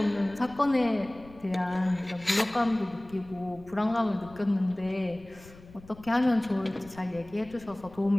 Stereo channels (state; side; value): noise; left; rumble, 21 dB below the sound